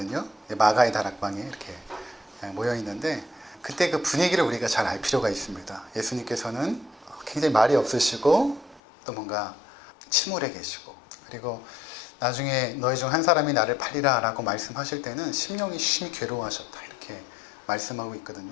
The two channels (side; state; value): right; drops out; at 8.8 s